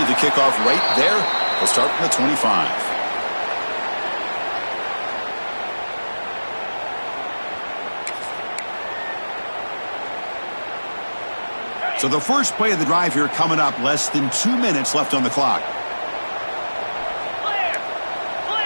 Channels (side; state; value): both; inverted; correlation -1.00